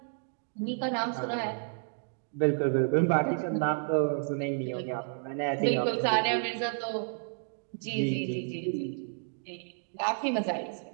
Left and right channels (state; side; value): silent; left; digital silence